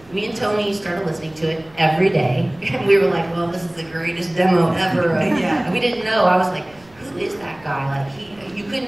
me and Tony started listening to it every day. And we were like, well, this is the greatest demo ever. And we didn't know. I was like, who is that guy? Like, you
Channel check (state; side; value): noise; right; rumble, 28 dB below the sound